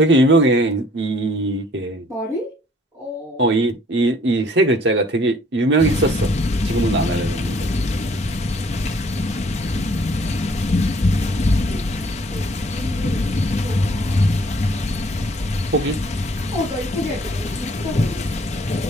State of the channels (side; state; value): both; normal; correlation 0.60